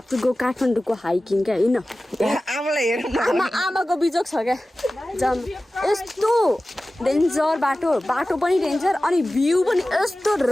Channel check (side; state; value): both; normal; correlation 0.96